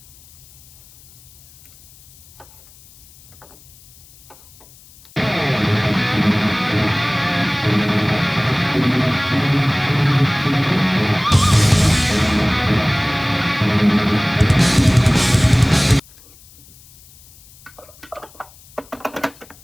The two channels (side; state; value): left; noise; hiss, 24 dB below the sound